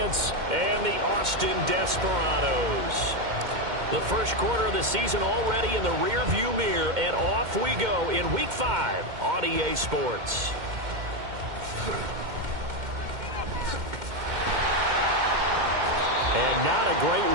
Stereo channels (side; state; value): left; late; 2.1 ms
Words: and the Austin Desperados. The first quarter of the season already in the rearview mirror, and off we go in Week 5 on EA Sports. And not a great